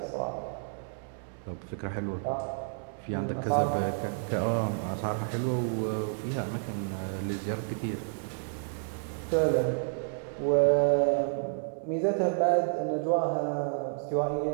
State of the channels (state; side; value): silent; left; digital silence